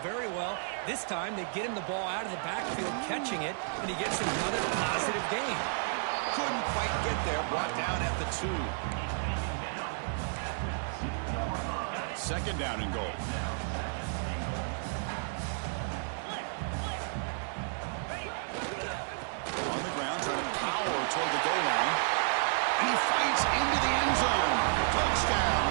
very well. This time, they get him the ball out of the backfield, catching it, and he gets another positive gain. Couldn't quite get there. Brought down at the 2. Second down and goal. On the ground, trying to power toward the goal line. And he fights into the end zone.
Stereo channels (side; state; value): left; silent; digital silence